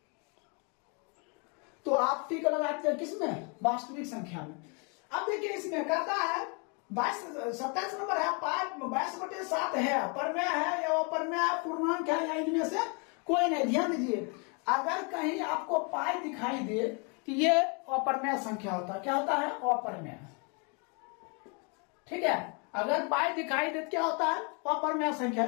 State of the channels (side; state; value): right; quieter; 34.7 dB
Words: तो आप टिक लगाते हैं किसमें वास्तविक संख्या में। अब देखिए इसमें कहता है 27 नंबर है 22/7 है, परमेय है या अपर्मेय है, पूर्णांक है या इनमें से कोई नहीं। ध्यान दीजिए अगर कहीं आपको पाई दिखाई दे कि ये अपरमेय संख्या होता है, क्या होता है अपरमेय, ठीक है। अगर पाई दिखाई दे क्या होता है अपरमेय संख्या।